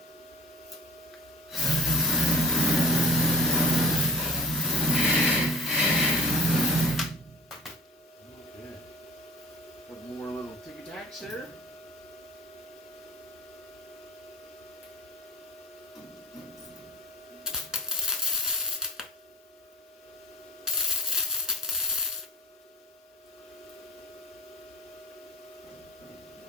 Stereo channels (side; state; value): both; normal; correlation 0.33